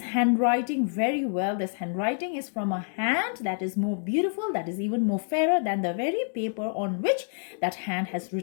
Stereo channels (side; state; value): right; silent; digital silence